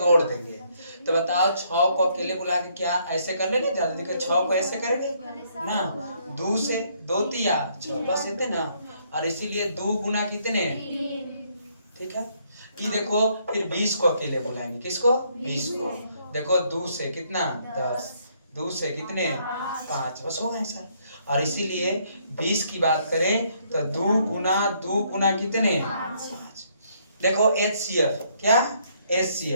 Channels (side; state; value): both; inverted; correlation -0.69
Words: देंगे। तो बताओ 6 को अकेले बुला के क्या ऐसे कर लेंगे? ज्यादा देखो 6 को ऐसे करेंगे ना, 2 से 2 तिया 6 बस इतने ना। और इसीलिए 2 गुना कितने? ठीक है। कि देखो फिर 20 को अकेले बुलाएंगे। किसको? 20 को। देखो 2 से कितना? 10, 2 से कितने? 5, बस हो गए सर। और इसीलिए 20 की बात करें तो 2 गुना कितने? 5। देखो एचसीएफ क्या?